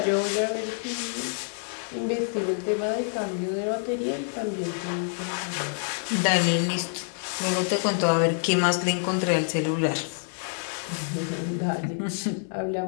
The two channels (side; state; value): right; silent; digital silence